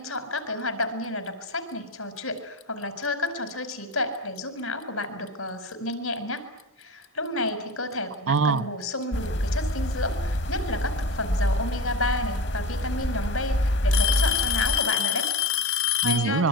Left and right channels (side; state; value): both; normal; correlation 0.26